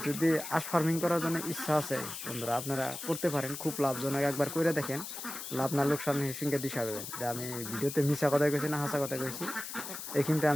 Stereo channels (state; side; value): noise; left; hiss, 8 dB below the sound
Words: যদি হাঁস ফার্মিং করার জন্য ইচ্ছা আছে বন্ধুরা, আপনারা করতে পারেন, খুব লাভজনক। একবার করে দেখেন, লাভ না লোকসান হিসেবে দিশা দেবেন যে আমি ভিডিওতে মিশা কথা কইছি না হাসা কথা কইছি। এই কিন্তু